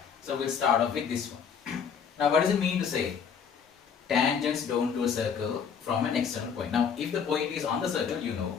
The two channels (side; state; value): right; quieter; 6.9 dB